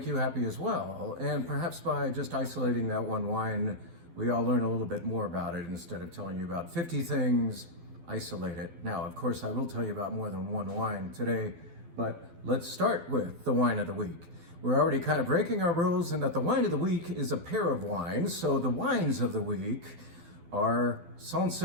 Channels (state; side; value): late; left; 12 ms